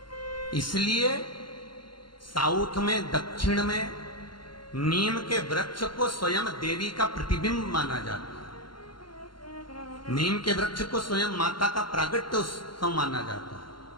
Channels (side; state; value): right; late; 0.72 ms